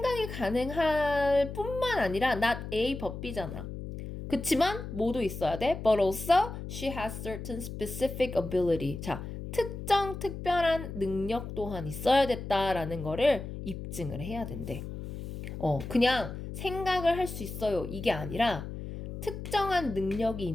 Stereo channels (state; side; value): noise; left; hum, 8 dB below the sound